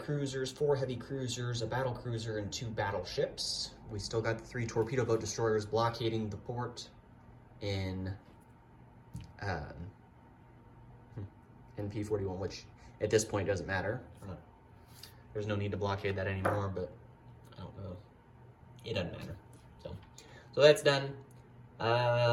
4 heavy cruisers, a battle cruiser, and 2 battleships. We still got the 3 torpedo boat destroyers blockading the port in P41, which at this point doesn't matter. There's no need to blockade that anymore, but I don't know. It doesn't matter. So that's done.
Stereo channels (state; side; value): identical; both; correlation 1.00